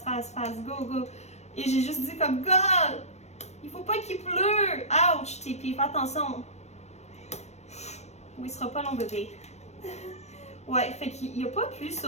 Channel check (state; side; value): late; right; 0.32 ms